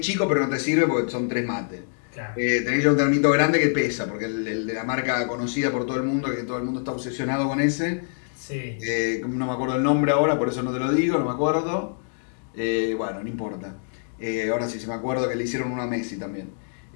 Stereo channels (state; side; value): silent; right; digital silence